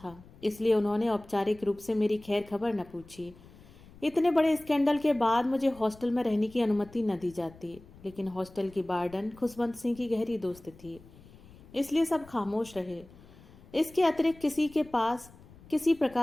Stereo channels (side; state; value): left; noise; rumble, 22 dB below the sound